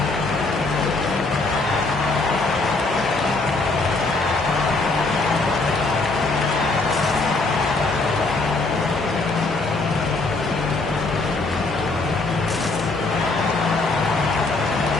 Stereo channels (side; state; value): right; quieter; 3.4 dB